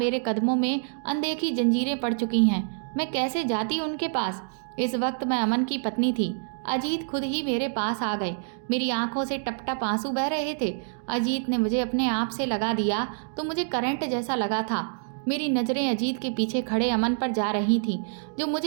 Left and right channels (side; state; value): left; silent; digital silence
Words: कदमों में अनदेखी जंजीरें पड़ चुकी हैं। मैं कैसे जाती उनके पास? इस वक्त मैं अमन की पत्नी थी। अजीत खुद ही मेरे पास आ गए। मेरी आंखों से टप टप आंसू बह रहे थे। अजीत ने मुझे अपने आप से लगा दिया तो मुझे करंट जैसा लगा था। मेरी नज़रें अजीत के पीछे खड़े अमन पर जा रही थीं, जो